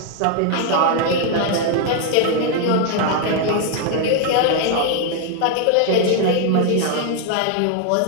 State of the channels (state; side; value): different; both; correlation 0.00